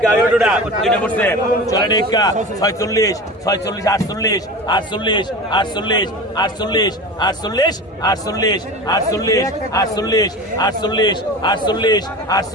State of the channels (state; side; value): normal; both; correlation 0.32